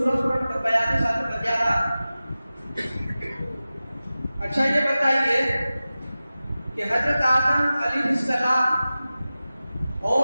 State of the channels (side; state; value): both; inverted; correlation -0.96